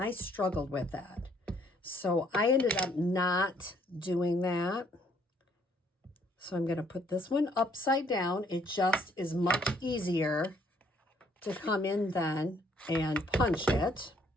struggled with that. So I ended up not doing that. So I'm going to put this one upside down. It just is much easier to come in then and punch it.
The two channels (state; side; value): normal; both; correlation 0.65